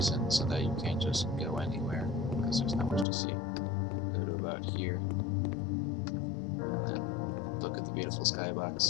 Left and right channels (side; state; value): right; drops out; at 3.1 s